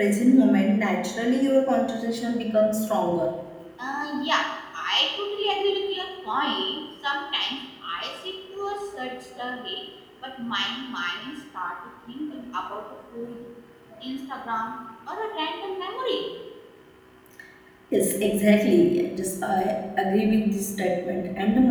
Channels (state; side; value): identical; both; correlation 1.00